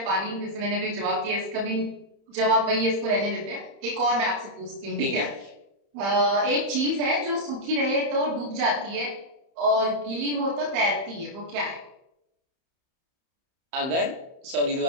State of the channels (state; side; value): late; left; 31 ms